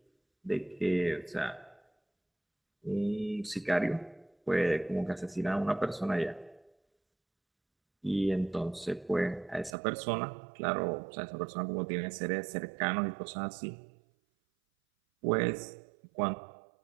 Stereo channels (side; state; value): left; drops out; at 9.7 s